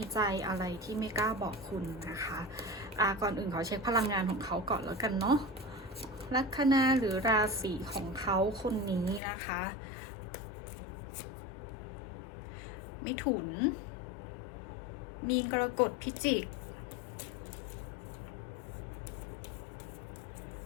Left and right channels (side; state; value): right; drops out; at 9.2 s